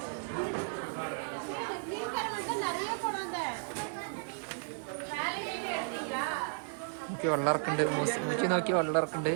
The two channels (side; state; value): left; silent; digital silence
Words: നോക്കി വെള്ളറക്കുണ്ട്. മൂച്ചി നോക്കി വെള്ളറക്കുണ്ട്.